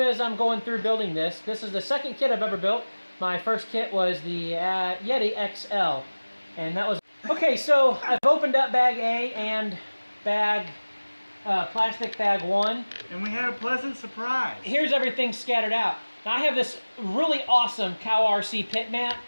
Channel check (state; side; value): inverted; both; correlation -1.00